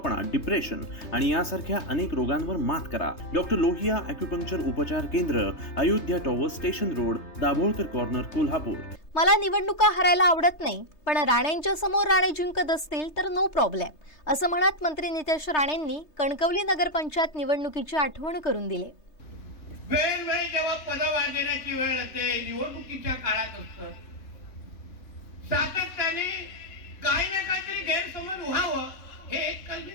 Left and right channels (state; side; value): late; right; 3.3 ms